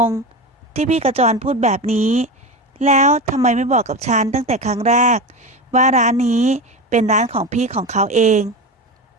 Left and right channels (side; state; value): both; normal; correlation 0.23